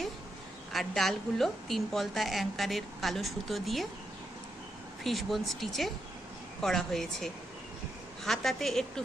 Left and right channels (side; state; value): both; normal; correlation 0.82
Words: আর ডালগুলো 3 পলতা অ্যাঙ্কারের কালো সুতো দিয়ে ফিশবোন স্টিচে করা হয়েছে। হাতাতে একটু